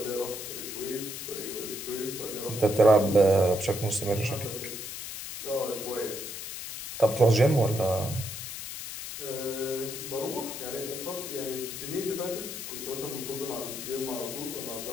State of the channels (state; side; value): noise; left; hiss, 8 dB below the sound